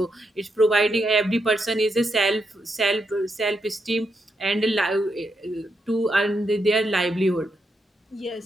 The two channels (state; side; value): normal; both; correlation 0.82